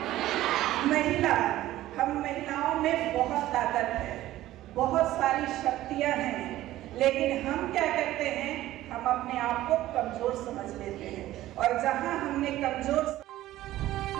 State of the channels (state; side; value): quieter; left; 15.0 dB